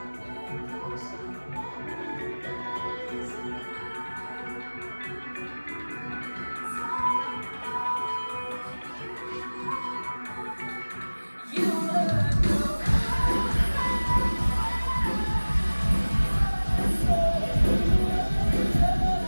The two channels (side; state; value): both; inverted; correlation -1.00